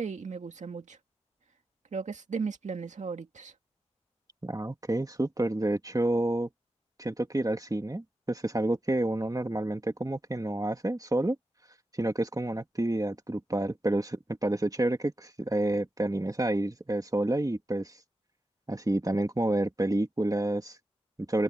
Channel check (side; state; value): both; normal; correlation 0.90